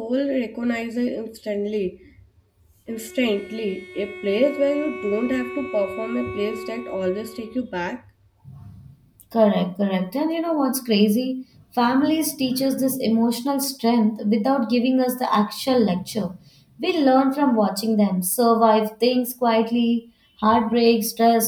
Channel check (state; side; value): identical; both; correlation 1.00